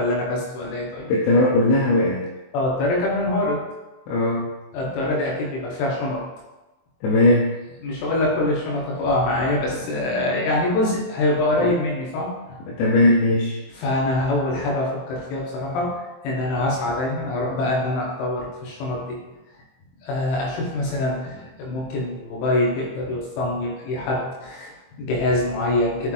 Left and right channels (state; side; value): late; right; 23 ms